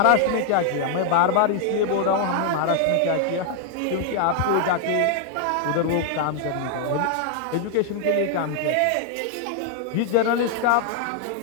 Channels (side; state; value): both; different; correlation 0.00